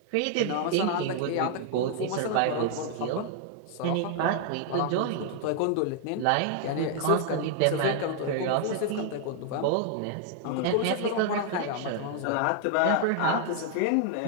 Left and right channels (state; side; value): different; both; correlation 0.00